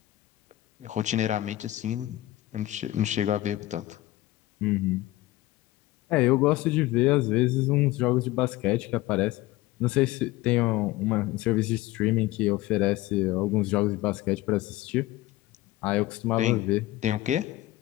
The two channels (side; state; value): right; quieter; 17.0 dB